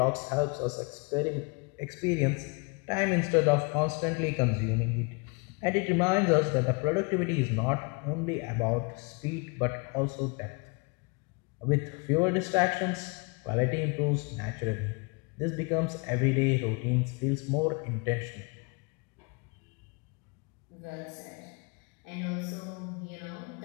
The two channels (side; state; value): right; quieter; 31.6 dB